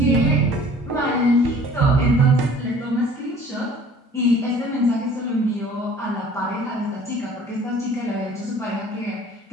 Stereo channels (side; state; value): both; normal; correlation 0.50